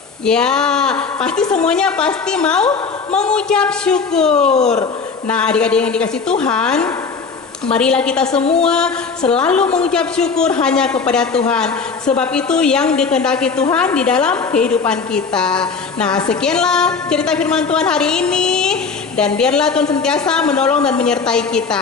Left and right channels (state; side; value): quieter; right; 5.1 dB